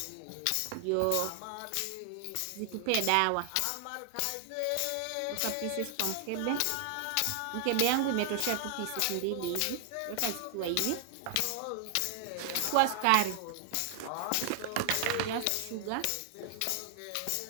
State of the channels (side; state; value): both; different; correlation 0.00